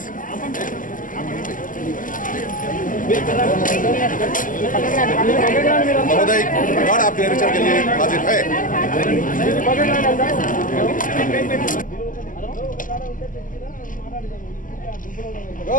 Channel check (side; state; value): right; late; 0.38 ms